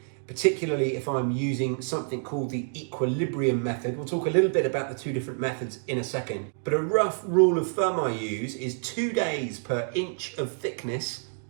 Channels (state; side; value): silent; left; 60 dB below the other